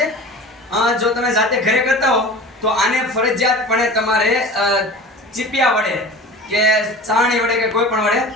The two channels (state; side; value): normal; both; correlation 0.38